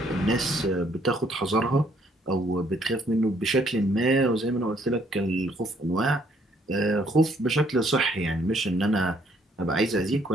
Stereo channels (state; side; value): normal; both; correlation 0.67